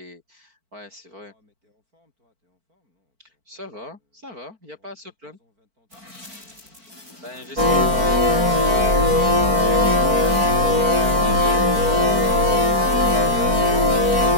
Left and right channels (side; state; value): left; late; 4.5 ms